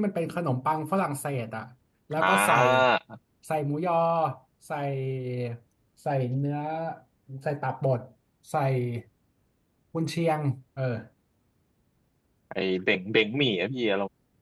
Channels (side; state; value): both; identical; correlation 1.00